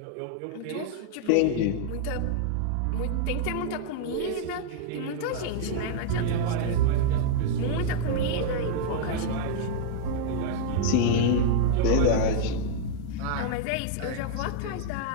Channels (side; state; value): both; different; correlation 0.00